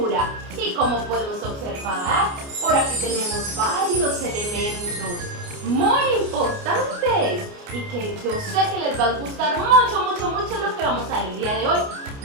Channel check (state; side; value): late; left; 29 ms